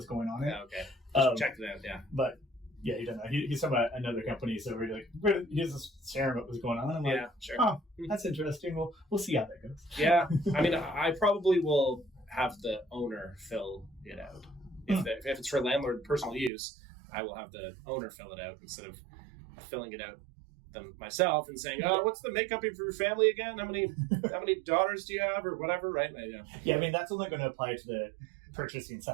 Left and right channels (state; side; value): drops out; left; at 16.5 s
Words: going on. Yeah, okay. Checked it out, yeah. But yeah, he doesn't know. He's from another company, so we're like, he's just sharing what was going on. I'm like, sure. Oh, that's interesting. We'll see how that goes. Yeah, I mean, I probably will have the owner fill it out. If it's for landlord personal use, I will have the owner fill it out instead of filling it out myself and saying, what's the makeup of your family again? How many daughters do you have or whatever, right? Yeah, I mean, that's only going to apply to the purchasing